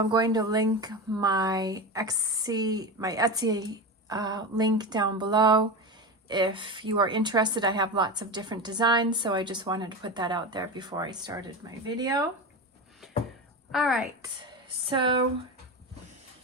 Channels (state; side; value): normal; both; correlation 0.22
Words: going to link my Etsy link down below. If you are interested, I have lots of different designs. So I just wanted to put that out there before I started my video. All right, so